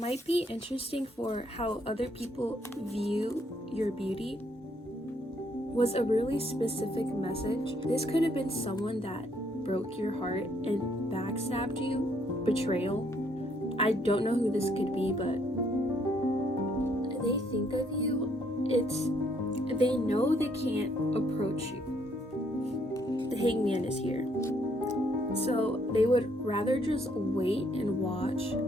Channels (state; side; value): normal; both; correlation 0.69